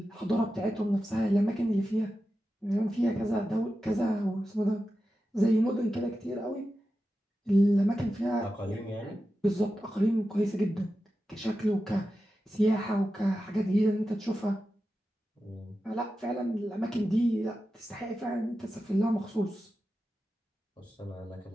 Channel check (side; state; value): both; normal; correlation 0.91